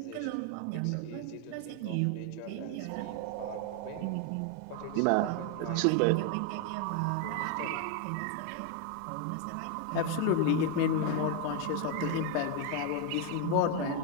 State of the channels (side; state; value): both; different; correlation 0.01